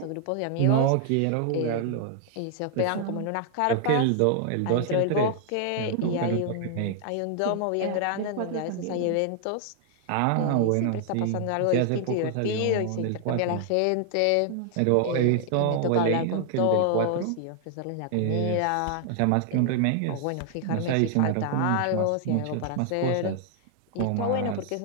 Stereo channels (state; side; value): different; both; correlation 0.00